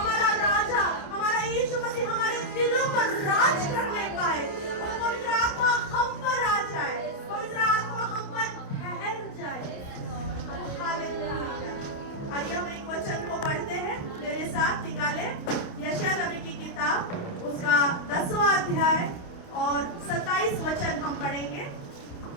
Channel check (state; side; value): late; right; 28 ms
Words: राजा, हमारा यीशु मसीह हमारे दिलों पर राज करने पाए। और पवित्र आत्मा हम पर आ जाए, पवित्र आत्मा हम पर ठहर जाए। हालेलुया। आइए हम एक वचन को पढ़ते हैं, मेरे साथ निकाले। यशायाह नबी की किताब, उसका 10वां अध्याय और 27 वचन हम पढ़ेंगे।